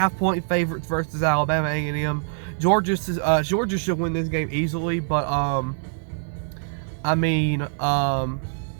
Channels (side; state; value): left; silent; 63 dB below the other